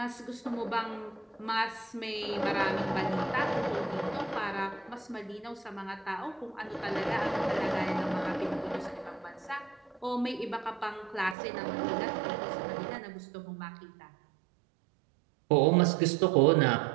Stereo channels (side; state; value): left; drops out; at 11.4 s